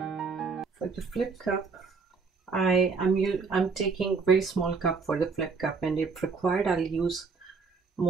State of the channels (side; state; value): left; quieter; 4.9 dB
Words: For the flip cup, I'm taking very small cup for the flip cup, and if required I'll use